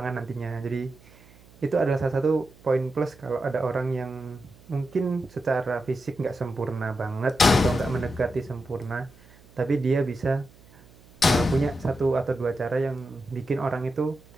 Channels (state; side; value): noise; right; hum, 25 dB below the sound